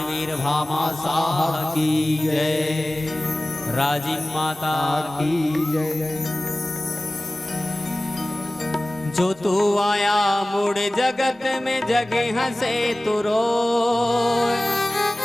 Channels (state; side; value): normal; both; correlation 0.97